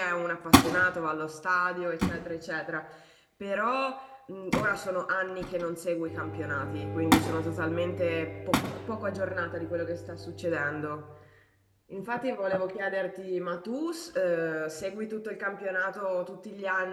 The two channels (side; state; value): both; identical; correlation 1.00